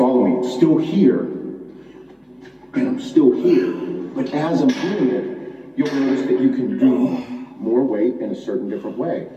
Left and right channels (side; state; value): both; identical; correlation 1.00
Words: me? It's still here, and I'm still here. But as I'm doing it, you'll notice that you can do more weight in a certain different way.